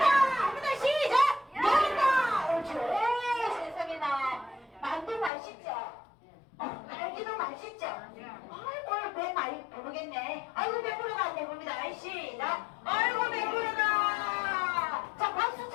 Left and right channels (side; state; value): right; drops out; at 5.3 s